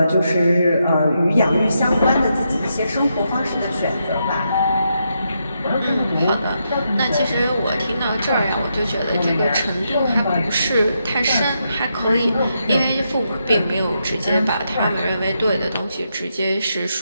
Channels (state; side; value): inverted; both; correlation -0.82